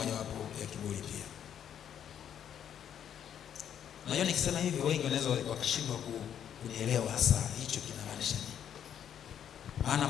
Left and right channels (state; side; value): quieter; right; 9.3 dB